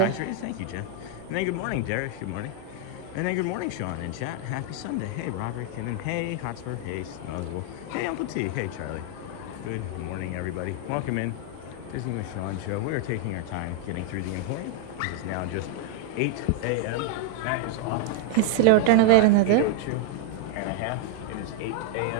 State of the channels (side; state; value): both; different; correlation 0.00